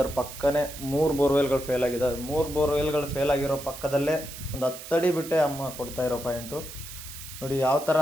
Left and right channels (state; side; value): noise; right; hiss, 12 dB below the sound